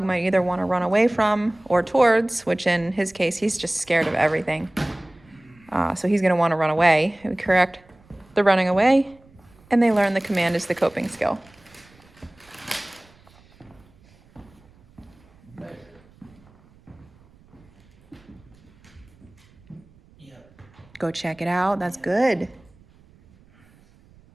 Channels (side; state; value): right; noise; rumble, 29 dB below the sound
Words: might either want to run away from or towards, which in his case, he's just scared of everything. So he's going to want to run away. We correct the running away, and they learn the command is the coping skill. Go check it out. That's good.